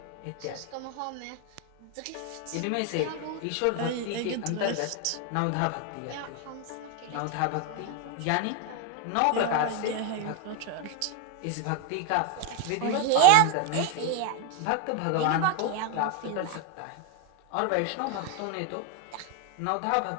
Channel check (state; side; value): different; both; correlation 0.01